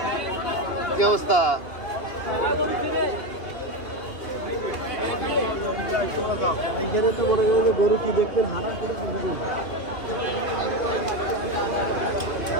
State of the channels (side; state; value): right; late; 2.8 ms